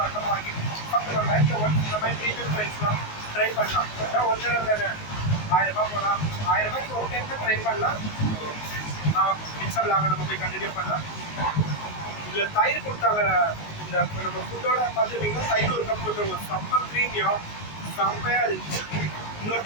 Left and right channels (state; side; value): late; right; 19 ms